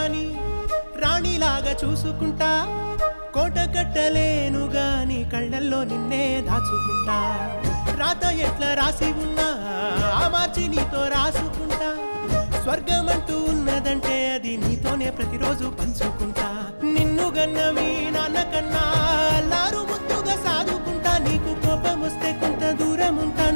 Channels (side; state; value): both; inverted; correlation -1.00